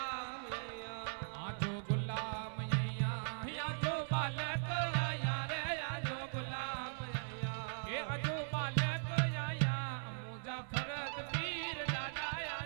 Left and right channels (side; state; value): left; silent; 51 dB below the other